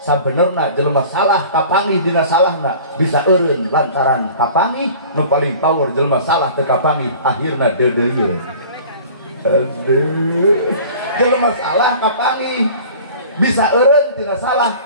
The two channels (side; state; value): both; inverted; correlation -0.44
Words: Sabenerna jelema salah kapangih dina salahna bisa eureun lantaran kapangih. Nu paling power jelema salah teu kapangih akhirna deudeuyeun. Aduh. Jelema salah kapangi bisa eureun tina salah